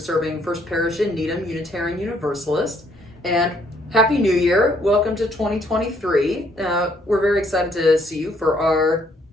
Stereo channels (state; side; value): normal; both; correlation 0.67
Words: serving First Parish in Needham, Unitarian Universalist. And Happy New Year. Welcome to 2023. We're very excited to see you for our